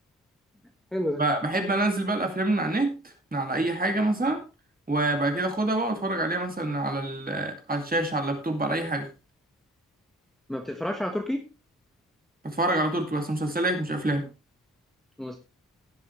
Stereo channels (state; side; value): normal; both; correlation 0.49